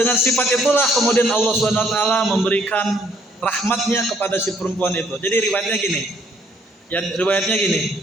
sifat itulah kemudian Allah Subhanahu wa taala memberikan rahmatnya kepada si perempuan itu. Jadi riwayatnya gini. Ya, riwayatnya gini.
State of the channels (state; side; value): normal; both; correlation 0.66